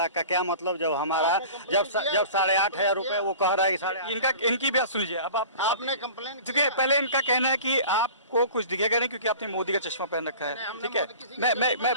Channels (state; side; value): inverted; both; correlation -0.41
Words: का क्या मतलब? जब हमारा जब 8,500 रुपये वो कह रहा है कि इनकी बात सुनिए। अब आपने कंप्लेन, देखिए पहले इनका कहना है कि आपको कुछ दिखेगा नहीं क्योंकि आपने मोदी का चश्मा पहन रखा है। ठीक है, मैं